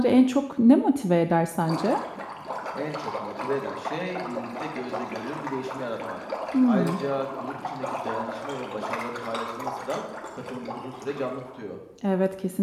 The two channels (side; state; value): both; identical; correlation 1.00